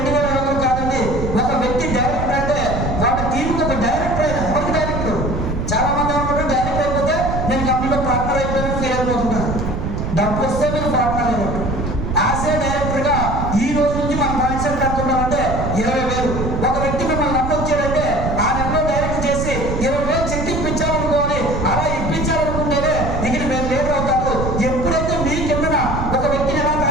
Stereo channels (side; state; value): right; noise; rumble, 3 dB below the sound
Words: కాదండి. ఒక వ్యక్తి డైరెక్టర్ అంటే వాళ్ళ టీంకి ఒక డైరెక్టర్ అయినా ఎవరికి డైరెక్టర్? చాలా మంది అనుకుంటారు డైరెక్టర్ అయిపోతే నేను కంపెనీలో పార్ట్నర్ అయిపోయినా ఫీల్ అయిపోతుంటారు. డబ్బు వస్తే మీరు పార్ట్నర్ అయినట్టు. యాజ్ ఏ డైరెక్టర్ గా ఈ రోజు నుంచి మన మైండ్ సెట్ అనుకుంటామంటే 20,000. ఒక వ్యక్తి మిమ్మల్ని నమ్మి వచ్చాడంటే ఆ నెలలో డైరెక్ట్ చేసి 20,000 చెక్ ఇప్పించాలనుకోవాలి. అలా ఇప్పించాలనుకుంటేనే ఇక్కడ మీరు లీడర్ అవుతారు. ఎప్పుడైతే మీ కిందన ఒక వ్యక్తిని ఎలా